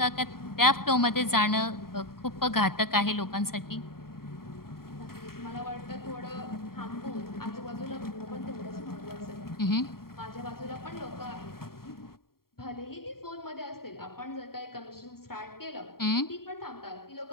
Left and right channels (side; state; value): right; late; 0.93 ms